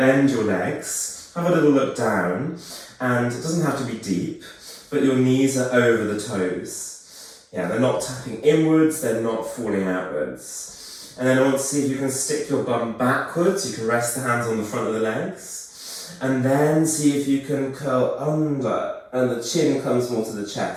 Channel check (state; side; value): identical; both; correlation 1.00